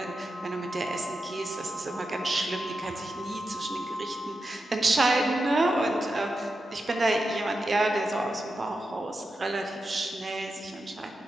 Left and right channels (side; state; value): both; normal; correlation 0.89